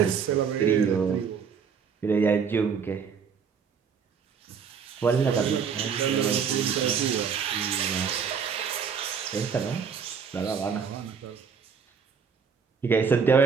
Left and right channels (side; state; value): left; quieter; 6.4 dB